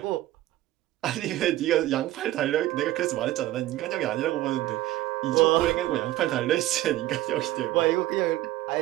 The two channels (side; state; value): left; quieter; 15.6 dB